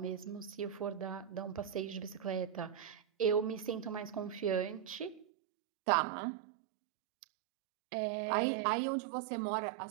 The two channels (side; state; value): left; drops out; at 5.2 s